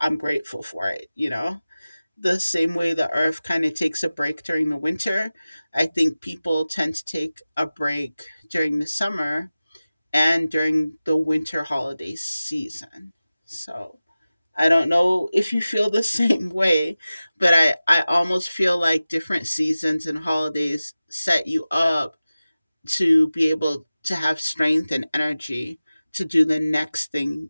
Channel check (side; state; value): both; inverted; correlation -0.96